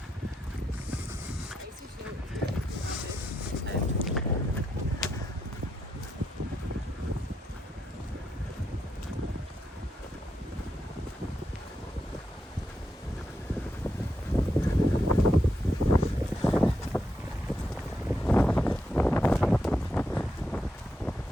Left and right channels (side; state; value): both; normal; correlation 0.82